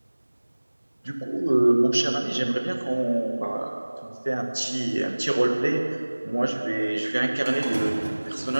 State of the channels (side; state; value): both; inverted; correlation -1.00